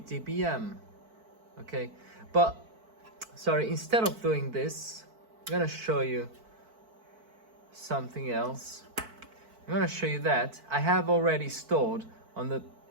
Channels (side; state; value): left; late; 4.5 ms